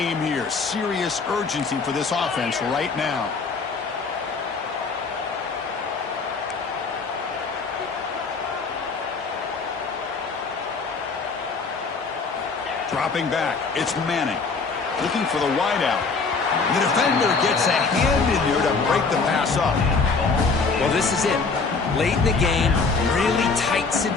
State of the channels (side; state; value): right; quieter; 4.6 dB